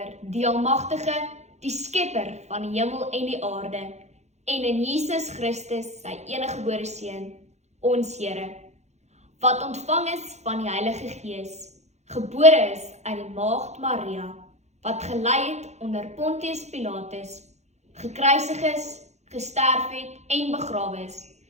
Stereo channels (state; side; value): late; left; 0.33 ms